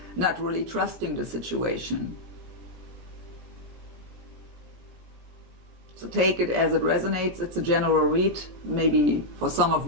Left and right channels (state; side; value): late; left; 17 ms